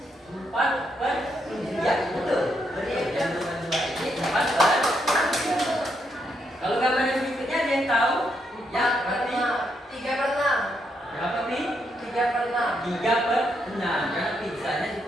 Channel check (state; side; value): normal; both; correlation 0.78